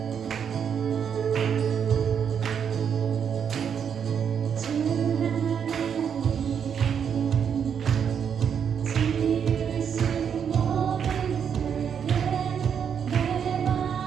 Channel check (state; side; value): quieter; left; 7.7 dB